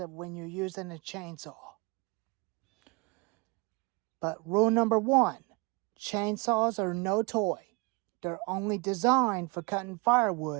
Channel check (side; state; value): left; quieter; 28.9 dB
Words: when you're using a chainsaw. But rule number one, chainsaws are no toy. They're only designed for cutting